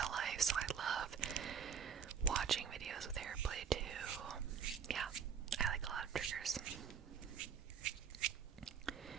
life, so I love watching videos with hair play too. Yeah, I like a lot of triggers.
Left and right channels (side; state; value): left; quieter; 7.1 dB